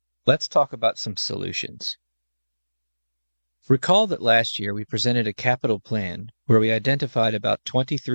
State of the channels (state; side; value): inverted; both; correlation -1.00